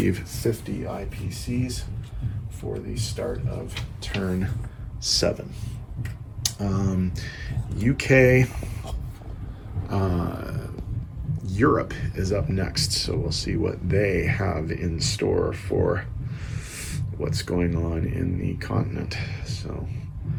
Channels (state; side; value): identical; both; correlation 1.00